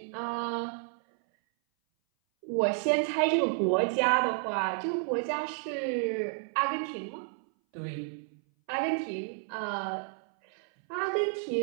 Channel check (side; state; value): left; silent; 57 dB below the other